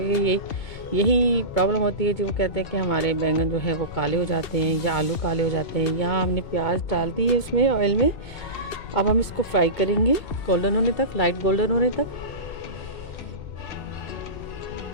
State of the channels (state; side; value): late; right; 2.2 ms